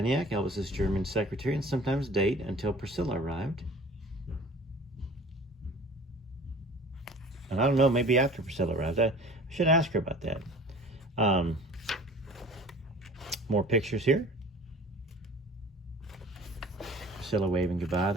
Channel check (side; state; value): both; normal; correlation 0.45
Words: Elvis's German secretary and sometimes date until Priscilla arrived. And I don't know, maybe after Priscilla arrived. I should ask her about that. More pictures here. Priscilla waving goodbye,